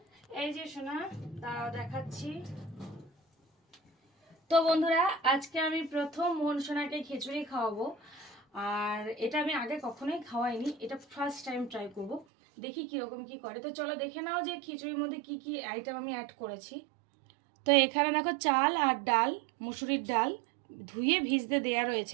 এই যে শোনা, দাঁড়াও দেখাচ্ছি। তো বন্ধুরা, আজকে আমি প্রথম মোহন সোনাকে খিচুড়ি খাওয়াবো। আর এটা আমি আগে কখনোই খাওয়াইনি, এটা ফার্স্ট টাইম ট্রাই করব। দেখি কিরকম কি করে। তো চলো দেখে নাও যে খিচুড়ির মধ্যে কি কি আইটেম আমি অ্যাড করেছি। তো এখানে দেখো চাল আর ডাল, মুসুরির ডাল ধুয়ে ভিজতে দেয়া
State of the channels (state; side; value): drops out; left; at 12.2 s